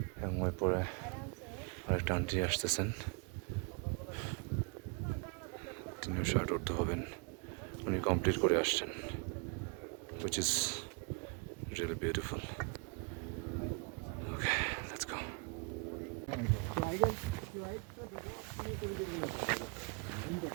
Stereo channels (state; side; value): quieter; left; 33.5 dB